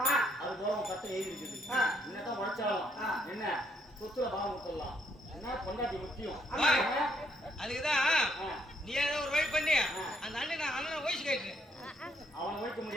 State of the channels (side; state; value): both; normal; correlation 0.71